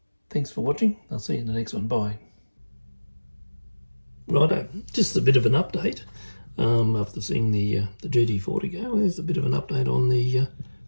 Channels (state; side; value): inverted; both; correlation -1.00